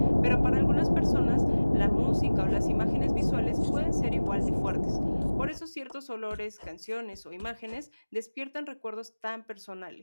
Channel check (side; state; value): both; inverted; correlation -1.00